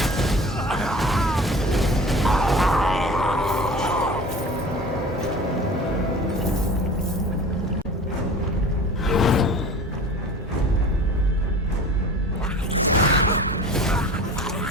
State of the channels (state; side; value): normal; both; correlation 0.40